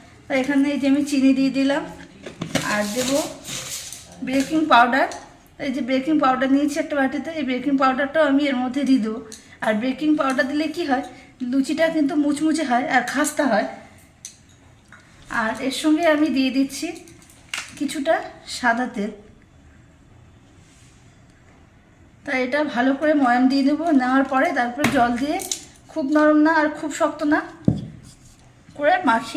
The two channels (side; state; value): both; identical; correlation 1.00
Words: তাই এখানে এই যে আমি চিনি দিয়ে দিলাম। আর দেব বেকিং পাউডার। এই যে বেকিং পাউডার নিয়েছি একটা বাটিতে, এই বেকিং পাউডারটাও আমি এর মধ্যে দিয়ে দেবো। আর বেকিং পাউডার দিলে কি হয়, লুচিটা কিন্তু মুচমুচে হয় আর খাস্তা হয়। আর এর সঙ্গে আমি দিয়ে দিচ্ছি কিছুটা সাদা তেল। তাই এটা ভালো করে ময়াম দিয়ে দেবো। নেওয়ার পরে তারপরে জল দিয়ে খুব নরম না আর খুব শক্ত না করে